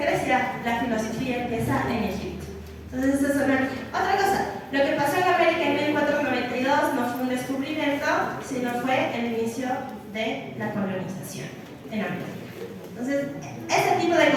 Grecia, la filosofía empieza en Egipto. Entonces, eso es otra cosa. Lo que pasó en América en 1492 no fue un descubrimiento, sino fue el inicio de la colonización en América. Entonces, ese tipo de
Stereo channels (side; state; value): both; identical; correlation 1.00